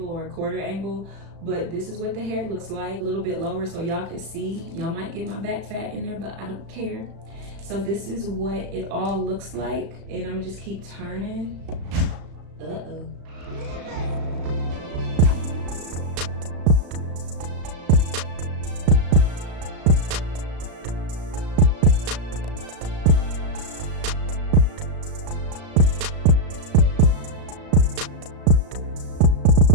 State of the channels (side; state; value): left; late; 36 ms